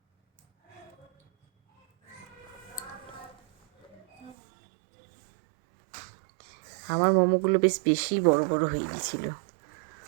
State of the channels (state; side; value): drops out; left; at 4.4 s